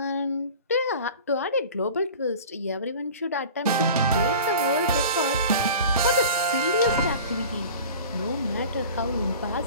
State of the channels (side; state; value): both; inverted; correlation -0.39